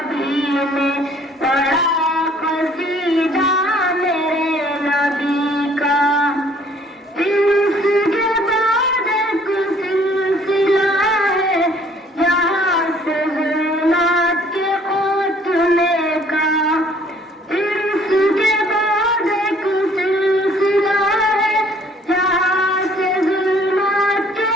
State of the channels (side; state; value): both; normal; correlation 0.59